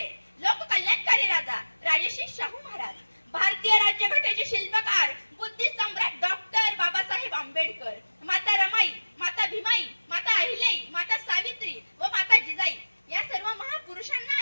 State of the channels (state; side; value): inverted; both; correlation -1.00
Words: लोककल्याणकारी राजा राजर्षी शाहू महाराज, भारतीय राज्यघटनेचे शिल्पकार बुद्धी सम्राट डॉक्टर बाबासाहेब आंबेडकर, माता रमाई, माता भीमाई, माता अहिल्याई, माता सावित्री व माता जिजाई या सर्व महापुरुषांना